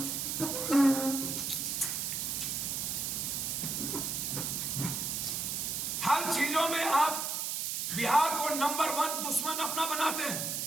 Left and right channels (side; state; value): right; noise; hiss, 1 dB below the sound